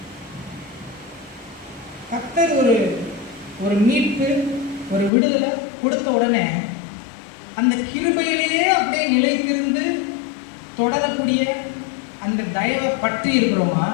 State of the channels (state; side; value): drops out; right; at 5.1 s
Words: கர்த்தர் ஒரு மீட்பு, ஒரு விடுதலை கொடுத்த உடனே அந்த கிருபையிலேயே அப்படியே நிலைத்திருந்து தொடரக்கூடிய அந்த தயவை பற்றி இருக்கிறோமா?